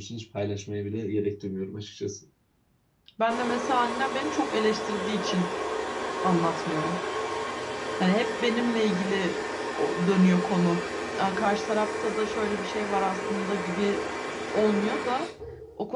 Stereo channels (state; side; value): identical; both; correlation 1.00